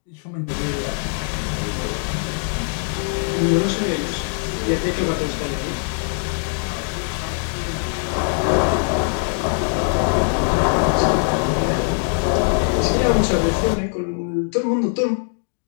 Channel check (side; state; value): right; silent; 59 dB below the other